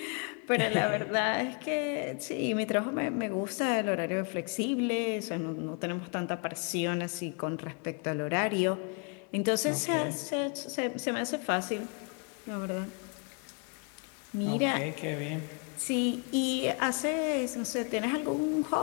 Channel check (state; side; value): quieter; right; 36.4 dB